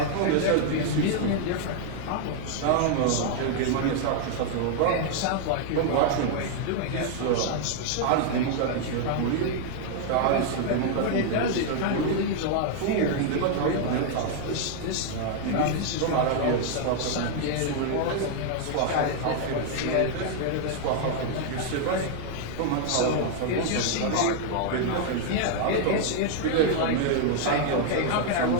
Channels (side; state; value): both; different; correlation 0.00